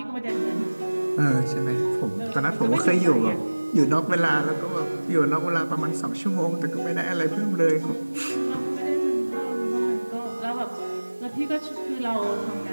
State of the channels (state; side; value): inverted; both; correlation -1.00